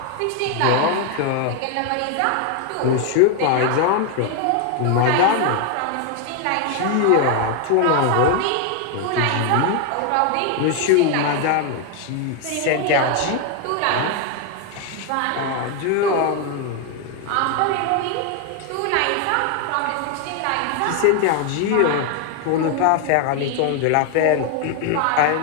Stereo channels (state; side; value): different; both; correlation 0.01